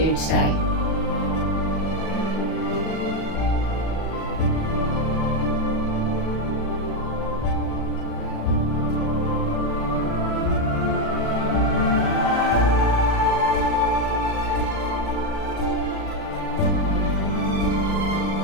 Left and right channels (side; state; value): right; late; 37 ms